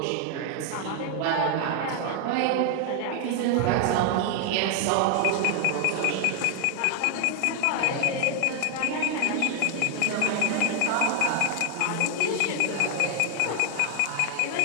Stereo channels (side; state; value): both; different; correlation 0.00